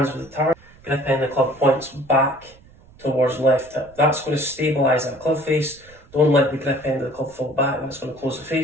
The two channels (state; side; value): noise; right; rumble, 26 dB below the sound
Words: with the target. Grip end of the club points back towards left hip. That's going to stabilise that club face. Don't let the grip end of the club fall back, that's going to close the